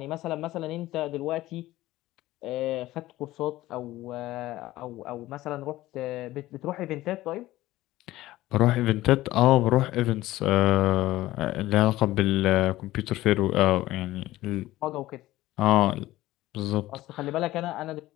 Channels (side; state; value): right; quieter; 16.5 dB